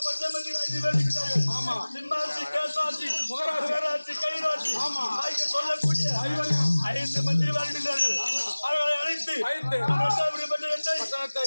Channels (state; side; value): inverted; both; correlation -1.00